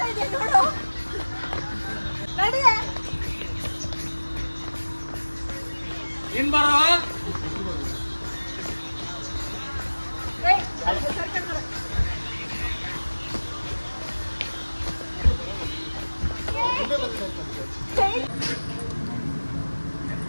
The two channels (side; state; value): both; inverted; correlation -1.00